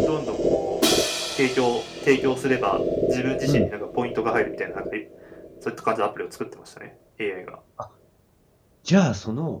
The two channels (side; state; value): both; identical; correlation 1.00